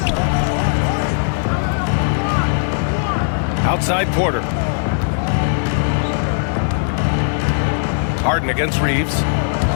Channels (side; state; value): right; silent; 63 dB below the other